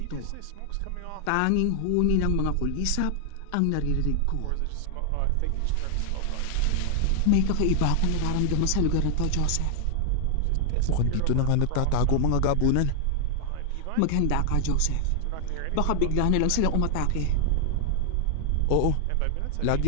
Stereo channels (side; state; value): both; different; correlation 0.00